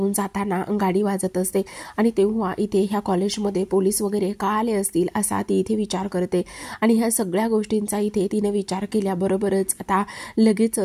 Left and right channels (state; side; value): identical; both; correlation 1.00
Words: जाताना गाडी वाजत असते आणि तेव्हा इथे ह्या कॉलेजमध्ये पोलीस वगैरे का आले असतील असा ती इथे विचार करते. आणि ह्या सगळ्या गोष्टींचा इथे तिने विचार केल्याबरोबरच आता